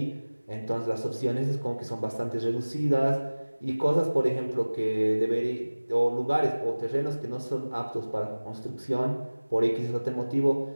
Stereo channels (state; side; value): inverted; both; correlation -1.00